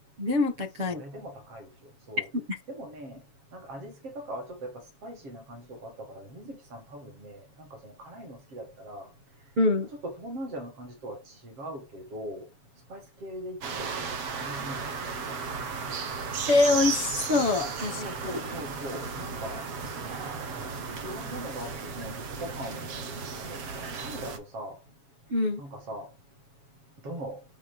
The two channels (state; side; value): late; left; 7.2 ms